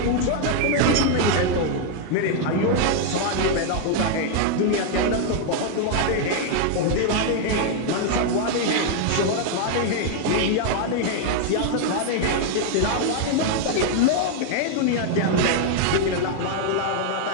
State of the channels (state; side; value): different; both; correlation 0.00